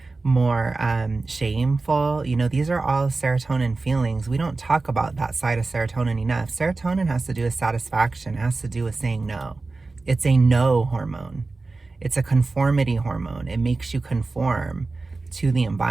more shameful. You know, these are all serotonin feelings. We don't talk about that side of serotonin enough. Serotonin has to do with satisfaction, it has to do with saying no. It's a no hormone. It's a conformity hormone. It makes you conform to the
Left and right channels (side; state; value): left; quieter; 3.6 dB